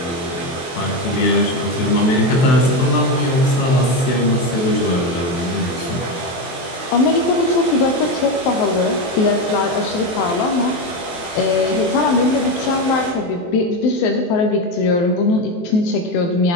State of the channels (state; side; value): late; right; 23 ms